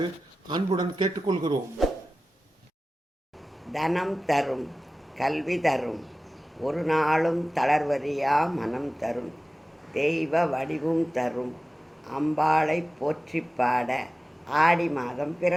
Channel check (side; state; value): both; normal; correlation 0.96